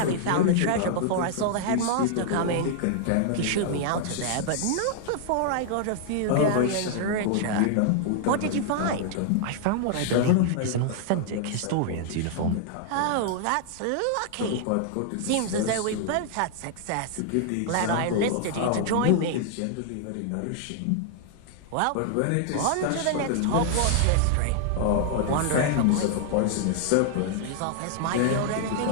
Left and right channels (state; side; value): different; both; correlation -0.01